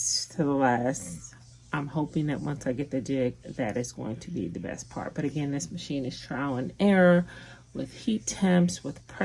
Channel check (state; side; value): identical; both; correlation 1.00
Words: to the last. I'm hoping that once I get the jig, that is going to be the best part. But again, this machine is trial and error with heat temps, with